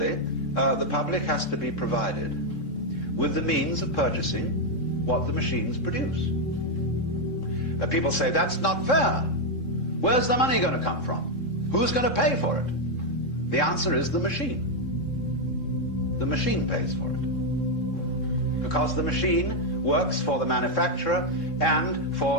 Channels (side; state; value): right; late; 3.7 ms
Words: the public has to be provided with the means of purchasing what the machines produce. People say, that's not fair. Where's the money going to come from? Who's going to pay for it? The answer is the machine. The machine pays for it. Because the machine works for the manufacturer and